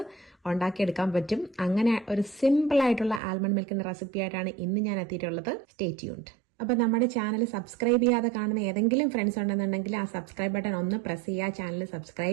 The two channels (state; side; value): drops out; left; at 3.2 s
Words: ഉണ്ടാക്കിയെടുക്കാൻ പറ്റും. അങ്ങനെ ഒരു സിമ്പിൾ ആയിട്ടുള്ള ആൽമണ്ട് മിൽക്കിന്റെ റെസിപ്പി ആയിട്ടാണ് ഇന്ന് ഞാൻ എത്തിയിട്ടുള്ളത്. Stay tuned. അപ്പൊ നമ്മുടെ ചാനൽ സബ്സ്ക്രൈബ് ചെയ്യാതെ കാണുന്ന ഏതെങ്കിലും ഫ്രണ്ട്സ് ഉണ്ടെന്നുണ്ടെങ്കിൽ ആ സബ്സ്ക്രൈബ് ബട്ടൺ ഒന്ന് പ്രസ് ചെയ്യുക, ചാനൽ